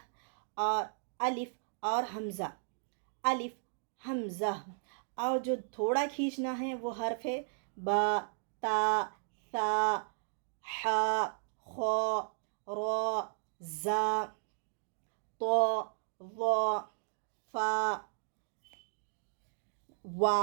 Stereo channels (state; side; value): silent; left; digital silence